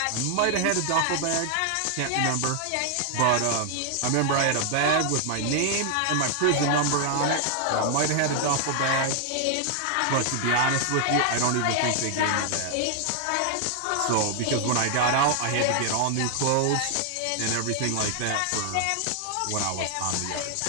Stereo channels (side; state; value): both; different; correlation 0.00